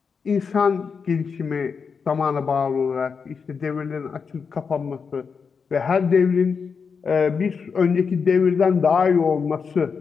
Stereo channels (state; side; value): quieter; right; 5.7 dB